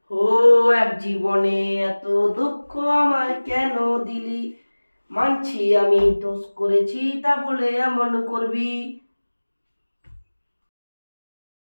ও এক জীবনে এত দুঃখ আমায় কেন দিলি, মানছি আমি দোষ করেছি, তা বলে এমন করবি।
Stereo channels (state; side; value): inverted; both; correlation -1.00